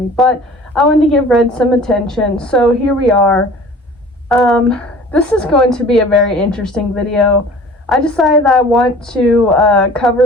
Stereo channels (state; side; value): normal; both; correlation 0.45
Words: but I wanted to give Red some attention, so here we are. This is going to be a very interesting video. I decided that I want to